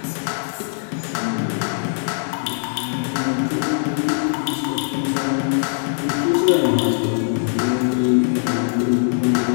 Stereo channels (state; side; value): silent; right; digital silence